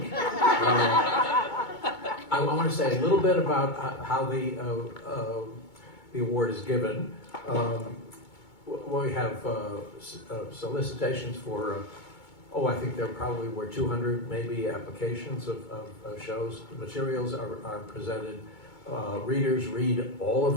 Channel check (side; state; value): right; late; 2.2 ms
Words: I want to say a little bit about how the award is given. We have solicitations for, I think there probably were 200 maybe applications of shows. The materials are presented. Readers read all